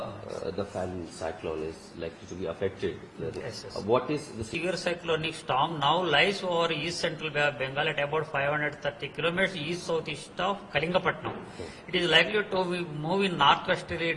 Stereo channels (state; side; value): identical; both; correlation 1.00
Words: the Fan cyclone is likely to be affected. Yes. What is the severe cyclonic storm now lies over east central Bay of Bengal at about 530 kilometers east southeast of Kalingapatnam. It is likely to move in northwesterly